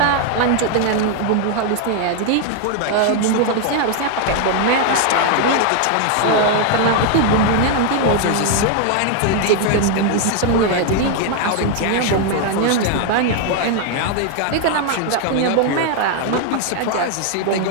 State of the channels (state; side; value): different; both; correlation 0.00